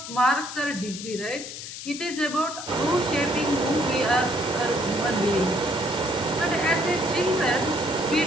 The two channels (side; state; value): left; noise; hiss, 10 dB below the sound